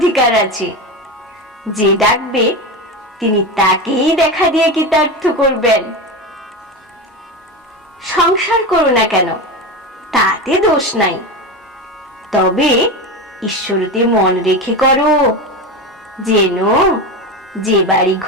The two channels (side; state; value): both; normal; correlation 0.21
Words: আছে। যে ডাকবে তিনি তাকেই দেখা দিয়ে কৃতার্থ করবেন। সংসার করো না কেন, তাতে দোষ নাই, তবে ঈশ্বরতে মন রেখে করো, যেন যে বাড়ি